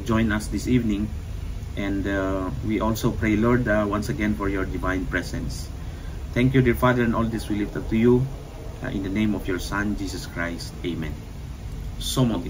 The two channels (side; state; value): both; identical; correlation 1.00